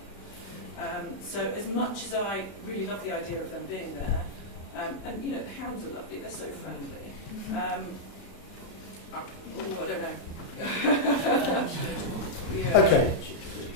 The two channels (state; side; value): late; right; 32 ms